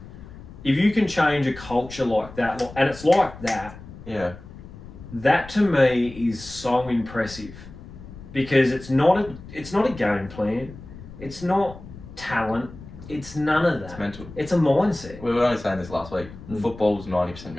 If you can change a culture like that, and it's like that, Yeah. that to me is so impressive. Because it's not a game plan. It's not talent. It's none of that. It's mental. It's a mindset. We were only saying this last week. Football's 90%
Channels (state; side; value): noise; left; rumble, 16 dB below the sound